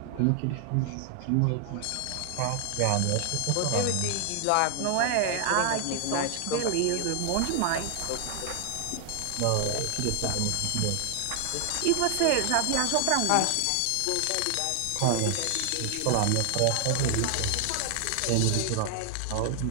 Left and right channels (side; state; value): both; different; correlation 0.00